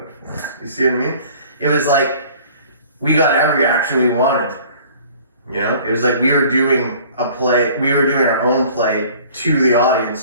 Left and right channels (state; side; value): inverted; both; correlation -0.50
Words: for. You see what I mean? It was like we got every reaction we wanted, you know? It was like we were doing a play, we were doing our own play to the